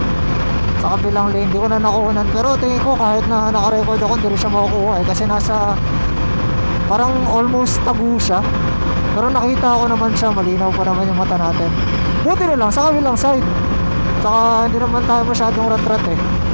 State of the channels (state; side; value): inverted; both; correlation -1.00